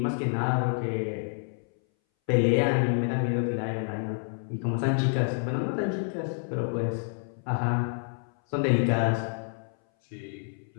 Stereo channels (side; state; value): right; silent; 59 dB below the other